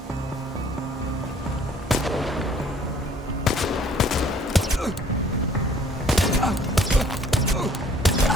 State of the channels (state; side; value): normal; both; correlation 0.57